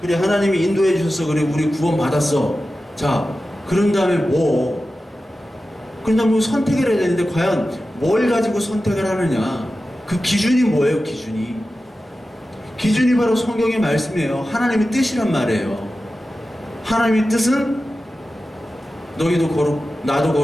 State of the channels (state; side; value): normal; both; correlation 0.94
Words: 그래 하나님이 인도해 주셔서 그래 우리 구원 받았어. 자 그런 다음에 뭐 그런 다음에 선택을 해야 되는데 과연 뭘 가지고 선택을 하느냐, 그 기준이 뭐예요? 기준이 바로 성경의 말씀이에요. 하나님의 뜻이란 말이에요. 하나님의 뜻은 나도